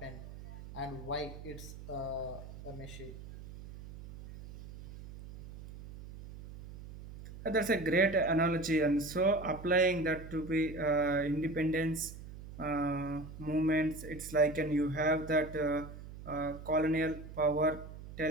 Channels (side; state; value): right; noise; hum, 14 dB below the sound